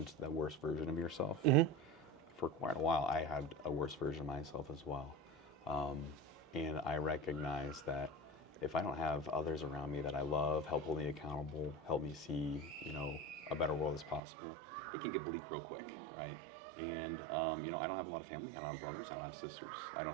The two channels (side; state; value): left; drops out; at 14.2 s